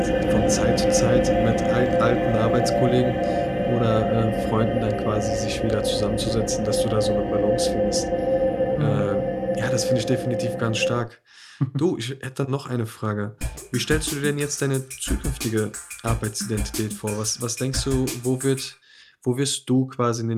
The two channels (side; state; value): both; identical; correlation 1.00